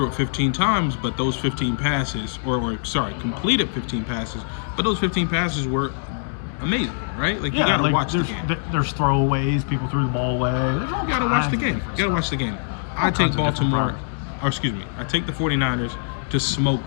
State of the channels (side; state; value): right; silent; digital silence